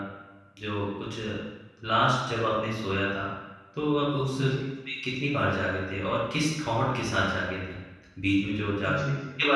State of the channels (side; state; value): both; identical; correlation 1.00